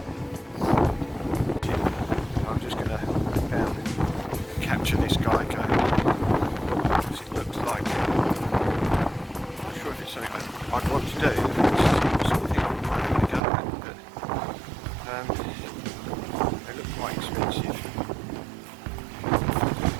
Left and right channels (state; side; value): drops out; left; at 13.4 s